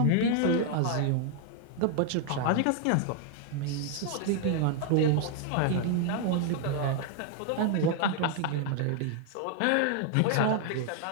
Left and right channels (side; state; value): both; different; correlation 0.00